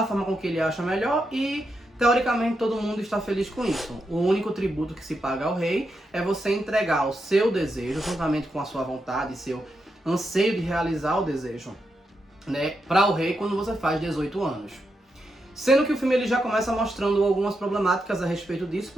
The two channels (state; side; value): normal; both; correlation 0.85